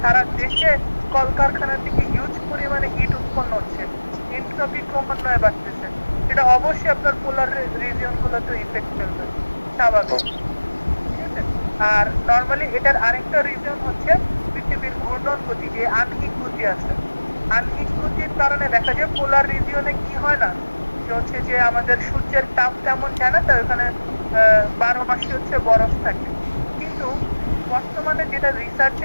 সারা দেশে কলকারখানা থেকে হিউজ পরিমাণে হিট উৎপন্ন হচ্ছে, এন্ট্রপি ক্রমান্বয়ে বাড়তেছে। এটা অবশ্যই আপনার পোলার রিজিয়ন গুলোতে ইফেক্ট ফেলবে, স্বাভাবিক। ঠিক আছে? আর নর্মালি এটার আরেকটা রিজন হচ্ছে পৃথিবীর ঘূর্ণন গতি, যে আনহিক গতি আছে। আনহিক গতির কারণে দেখা যায় পোলার রিজিয়নে কি হয় না, যে হচ্ছে যে আমাদের সূর্যের তাপ তেমন যায় না, তাই ওখানে 12 মাসই হচ্ছে বরফ থাকে। কিন্তু বর্তমানে যেটা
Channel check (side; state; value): both; inverted; correlation -1.00